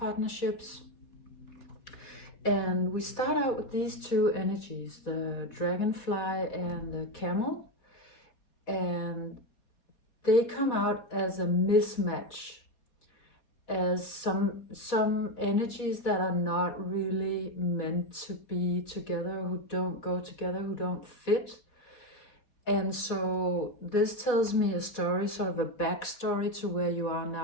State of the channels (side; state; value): right; late; 4.2 ms